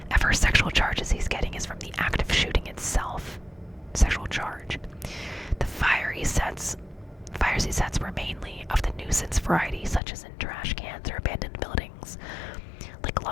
sexual charges he's getting is from the act of shooting itself. Sexual charge. The fires he sets were mainly of the nuisance variety, such as in trash cans or abandoned buildings. Like a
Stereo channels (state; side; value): drops out; right; at 10.0 s